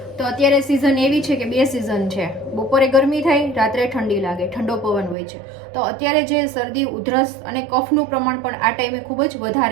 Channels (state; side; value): drops out; left; at 5.2 s